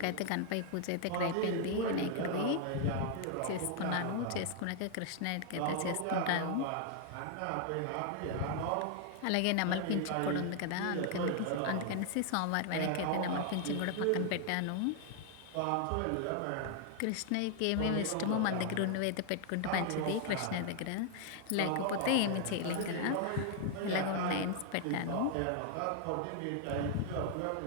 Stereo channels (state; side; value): different; both; correlation 0.00